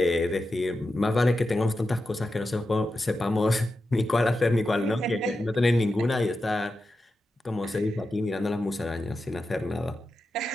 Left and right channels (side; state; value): both; normal; correlation 0.90